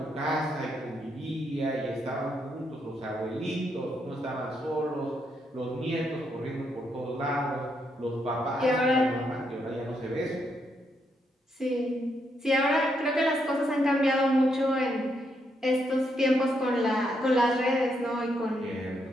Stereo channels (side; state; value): both; normal; correlation 0.78